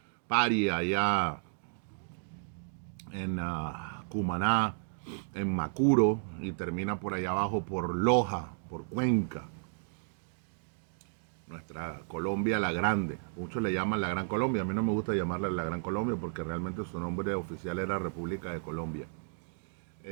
Paria, allá en Cumaná, en Macuro, y termina por allá abajo por Loja, por Cuenca, nuestra Colombia la Grande. Muchos le llaman la Gran Colombia, a mí no me gusta llamarla la Gran Colombia porque realmente su nombre oficial era República de Colombia.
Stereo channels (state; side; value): silent; left; digital silence